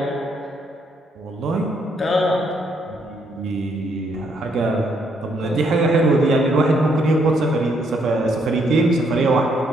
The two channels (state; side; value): normal; both; correlation 0.72